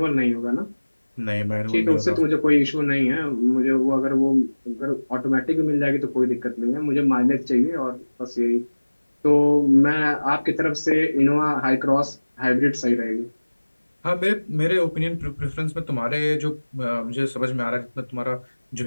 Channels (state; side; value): inverted; both; correlation -1.00